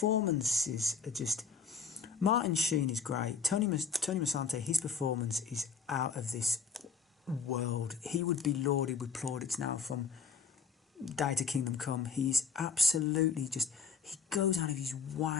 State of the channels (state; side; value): quieter; right; 5.7 dB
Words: are just. Martin Sheen is great. Tony Musante, his performance is out of this world. He would be lauded with plaudits now from Day to Kingdom Come. He's absolutely just, he goes out of his